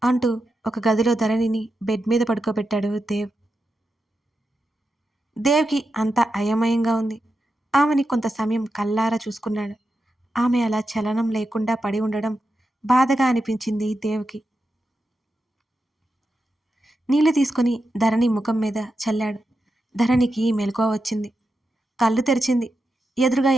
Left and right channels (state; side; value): normal; both; correlation 0.88